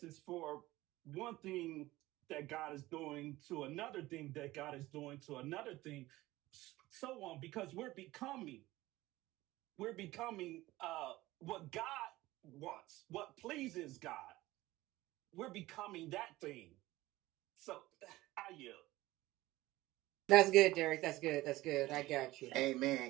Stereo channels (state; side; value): quieter; left; 17.9 dB